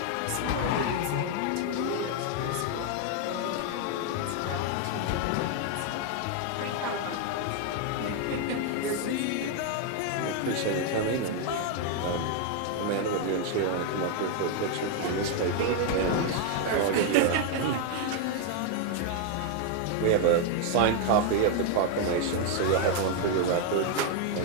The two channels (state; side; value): different; both; correlation 0.00